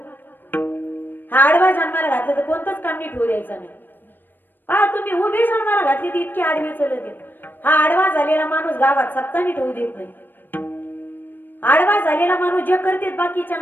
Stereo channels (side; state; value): right; late; 0.093 ms